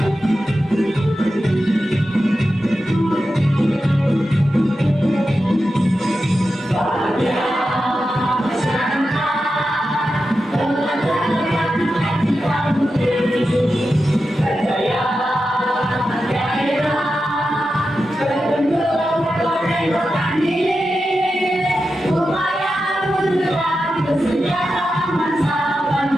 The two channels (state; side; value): normal; both; correlation 0.90